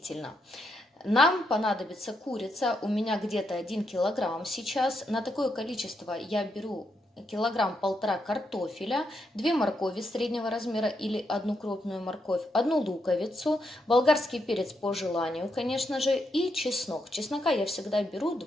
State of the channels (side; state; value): both; normal; correlation 0.81